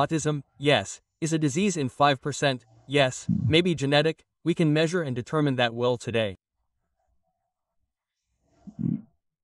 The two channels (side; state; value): both; identical; correlation 1.00